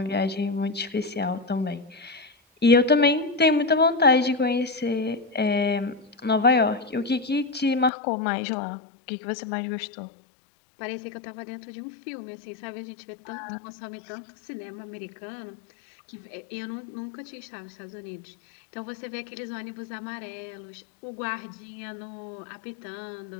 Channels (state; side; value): drops out; right; at 7.9 s